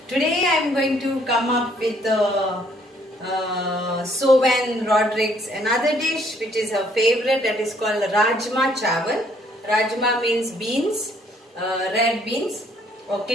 Today I am going to come up with Sovan Rodriguez, another dish which is her favorite, that is called Rajma Chawal. Rajma means beans, red beans or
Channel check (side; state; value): both; normal; correlation 0.65